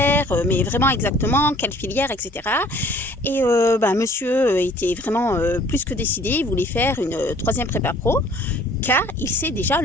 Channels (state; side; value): normal; both; correlation 0.54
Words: mais vraiment exactement quelle filière, etc. Et monsieur était vraiment plus que décidé, il voulait faire une troisième prépa pro, car il sait déjà